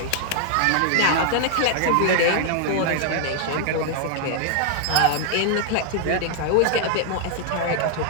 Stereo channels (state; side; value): different; both; correlation 0.00